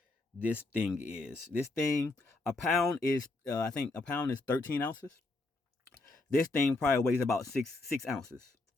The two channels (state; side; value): quieter; right; 3.1 dB